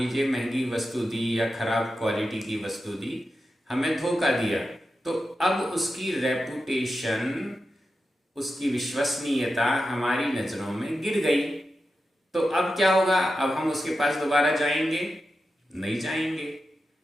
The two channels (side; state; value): both; normal; correlation 0.90